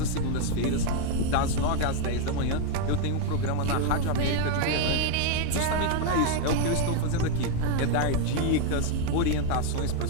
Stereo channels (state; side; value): different; both; correlation 0.01